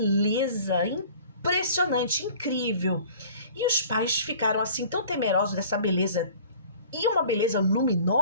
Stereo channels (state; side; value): inverted; both; correlation -0.47